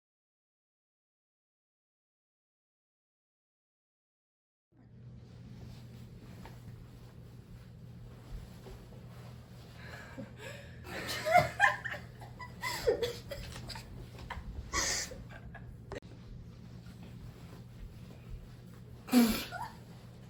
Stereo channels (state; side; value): identical; both; correlation 1.00